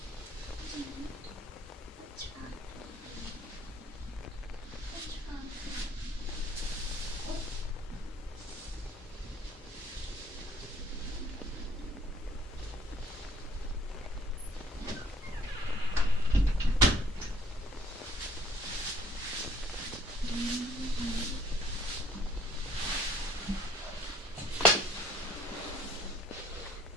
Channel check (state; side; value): normal; both; correlation 0.59